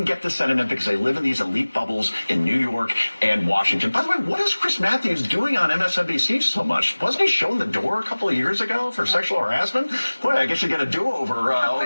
get the Senate in because they live in these elite bubbles in New York and Washington. By the way, what is Chris Matthews doing on MSNBC so much? Wasn't he shown the door a couple of years ago for sexual harassment? Boy, I guess you get a do-over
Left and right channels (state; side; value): inverted; both; correlation -1.00